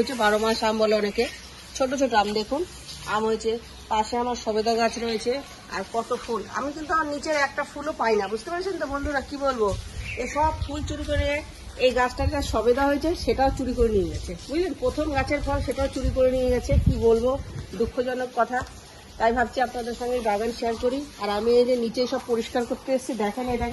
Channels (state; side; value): identical; both; correlation 1.00